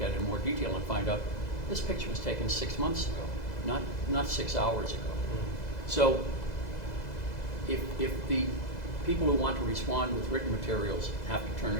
at in more detail and find out this picture was taken 6 months ago, not 6 hours ago. So if the people who want to respond with written materials have to turn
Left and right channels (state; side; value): late; right; 2.0 ms